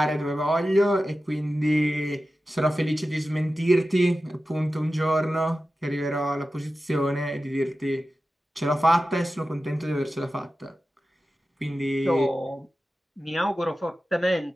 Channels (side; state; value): both; normal; correlation 0.94